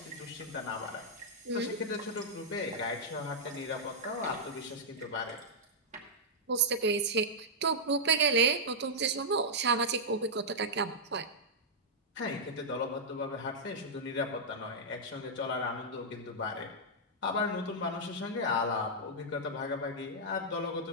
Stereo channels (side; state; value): both; normal; correlation -0.09